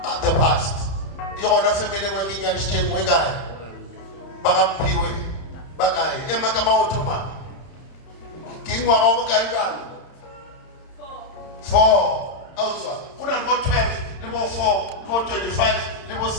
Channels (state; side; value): late; right; 31 ms